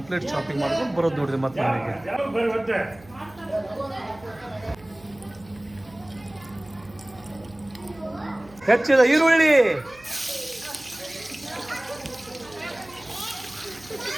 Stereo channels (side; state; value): right; noise; hum, 23 dB below the sound